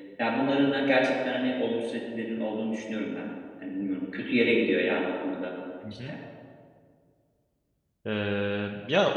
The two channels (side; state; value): both; identical; correlation 1.00